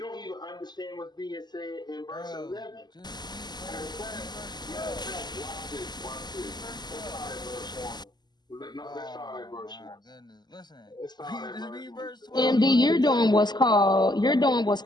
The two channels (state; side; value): late; right; 0.21 ms